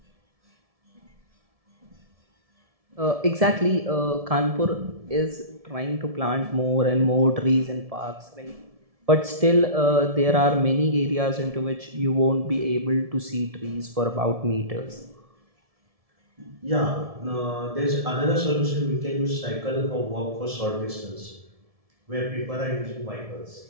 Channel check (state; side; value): late; left; 1.7 ms